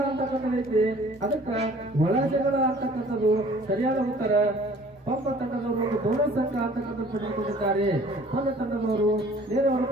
ಅಂತಕ್ಕಂಥದ್ದು ಐತಿ, ಅದಕ್ಕೆ ಒಳ ಜಗಳ ಅಂತಕ್ಕಂಥದ್ದು ಸರಿಯಾದ ಉತ್ತರ. ಒಬ್ಬ ತಂಡದವರು ಒಂದು ಬೋನಸ್ ಅಂಕ ಅಂತಕ್ಕಂಥದ್ದು ಪಡೆದುಕೊಂಡಿದ್ದಾರೆ. ಒಂದು ತಂಡದವರು ನೇರವಾದ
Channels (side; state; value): both; normal; correlation 0.52